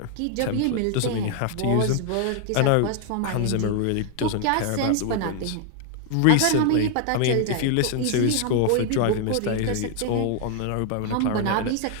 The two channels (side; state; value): both; different; correlation 0.00